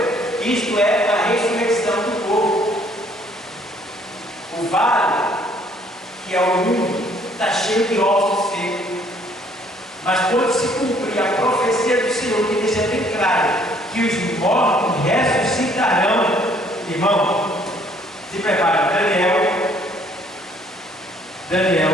Isto é a ressurreição do corpo. O vale, que é o mundo, está cheio de ossos secos. Mas quando se cumprir a profecia do Senhor, que deixa bem claro que os mortos ressuscitarão, irmão, se prepara. Daniel,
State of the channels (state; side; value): normal; both; correlation 0.62